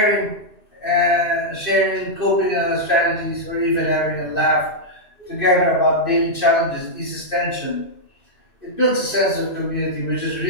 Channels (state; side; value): late; right; 2.6 ms